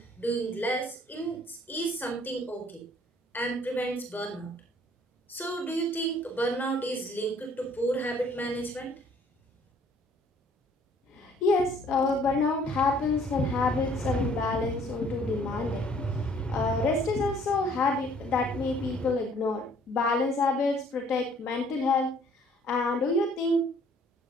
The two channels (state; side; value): normal; both; correlation 0.59